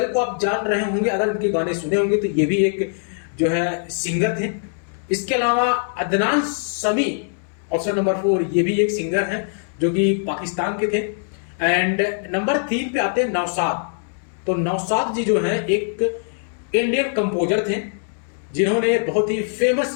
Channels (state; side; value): silent; right; 64 dB below the other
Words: को आप जान रहे होंगे, अगर उनके गाने सुने होंगे तो ये भी एक जो है सिंगर थे। इसके अलावा अदनान समी ऑप्शन नंबर 4 ये भी एक सिंगर है जो कि पाकिस्तान के थे। एंड नंबर 3 पे आते हैं नौशाद। तो नौशाद जी जो हैं एक इंडियन कंपोजर थे जिन्होंने बहुत ही